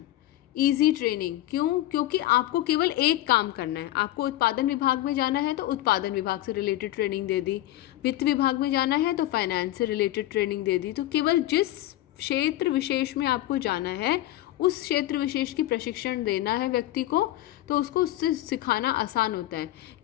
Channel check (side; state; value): right; quieter; 15.2 dB